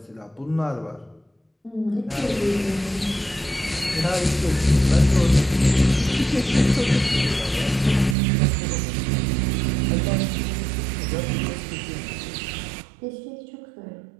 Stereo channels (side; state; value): left; drops out; at 8.2 s